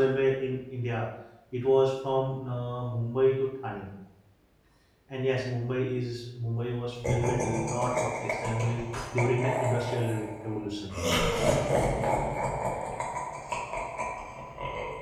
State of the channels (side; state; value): both; identical; correlation 1.00